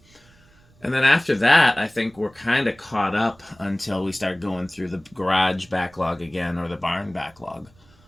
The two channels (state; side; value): noise; right; rumble, 29 dB below the sound